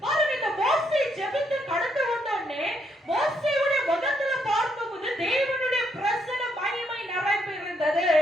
பாருங்க, இந்த மோசே ஜெபித்து கடந்து வந்தோடனே மோசேயுடைய முகத்துல பார்க்கும்போது தேவனுடைய பிரசன்ன மகிமை நிறைந்து இருந்தது.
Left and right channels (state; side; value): normal; both; correlation 0.74